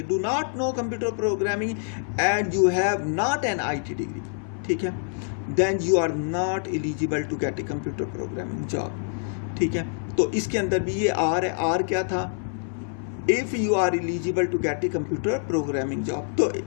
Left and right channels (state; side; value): silent; right; 57 dB below the other